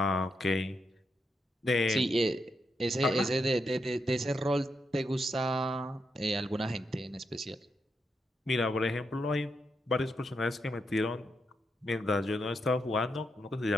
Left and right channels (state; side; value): normal; both; correlation 0.83